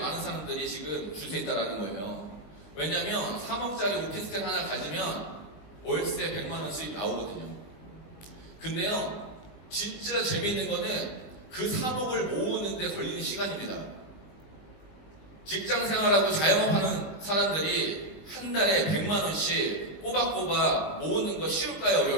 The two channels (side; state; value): right; late; 19 ms